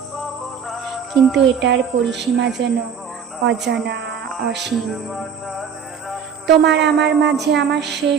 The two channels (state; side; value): quieter; left; 7.1 dB